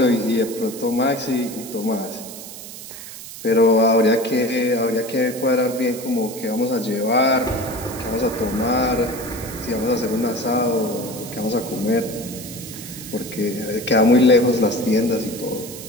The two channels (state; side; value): noise; right; hiss, 13 dB below the sound